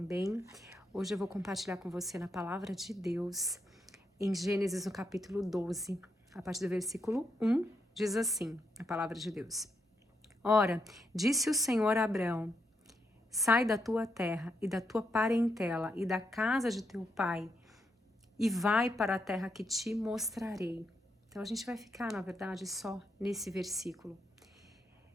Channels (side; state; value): both; normal; correlation 0.81